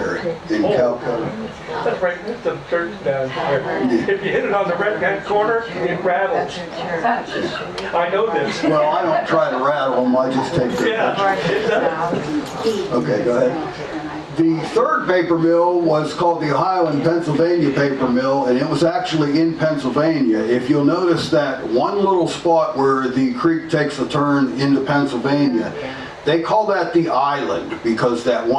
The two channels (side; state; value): both; identical; correlation 1.00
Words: in Calcutta. That's right, that's the church down there. If you hit it on the right-hand corner, it rattles. I know this. Well, I don't try to rattle them, I just take their pictures. Yeah, it does. Okay, go ahead. The third paper mill was called the Ohio and Pennsylvania Paper Mill, and it was actually in Pennsylvania. If you'll notice that one little spot where the creek takes a turn into Pennsylvania, they call that the island because that